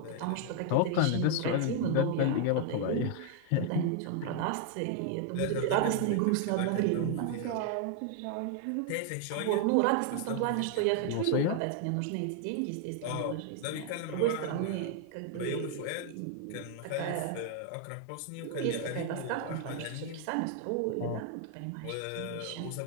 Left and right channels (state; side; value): different; both; correlation 0.00